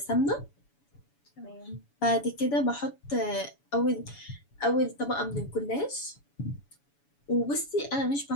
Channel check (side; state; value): right; late; 7.1 ms